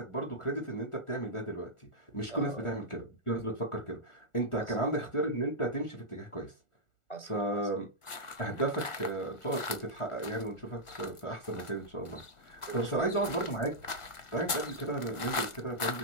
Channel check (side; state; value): right; late; 1.4 ms